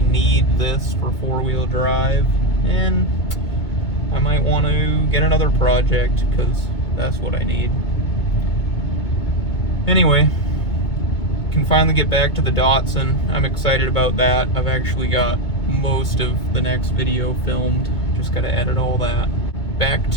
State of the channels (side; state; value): right; late; 2.2 ms